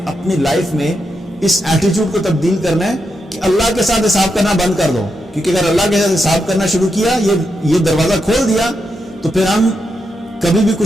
اپنی لائف میں اس ایٹیٹیوڈ کو تبدیل کرنا ہے کہ اللہ کے ساتھ حساب کرنا بند کر دو. کیونکہ اگر اللہ کے ساتھ حساب کرنا شروع کیا, یہ دروازہ کھول دیا, تو پھر ہم کبھی بھی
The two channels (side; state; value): both; normal; correlation 0.84